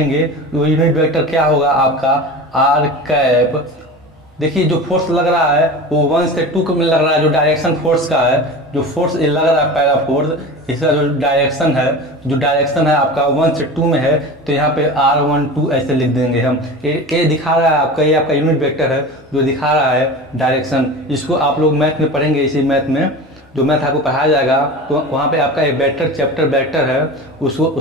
वो यूनिट वेक्टर क्या होगा आपका R कैप। देखिए जो फोर्स लग रहा है वो 1 से 2 में लग रहा है, जो डायरेक्शन फोर्स का है, जो फोर्स ये लग रहा है पहला फोर्स, इसका जो डायरेक्शन है आपका 1 से 2 में है, तो यहाँ पे R12 ऐसे लिख देंगे हम। ये दिखा रहा है आपका, ये आपका यूनिट वेक्टर है जो दिखा रहा है डायरेक्शन। इसको आप लोग मैथ में पढ़ेंगे, इसी मैथ में जो मैथ आपको पढ़ाया जाएगा, तो वहाँ पे आपका एक वेक्टर चैप्टर वेक्टर है,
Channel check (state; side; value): normal; both; correlation 0.32